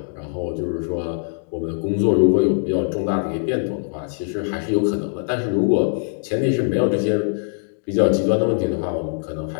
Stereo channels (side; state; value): right; silent; digital silence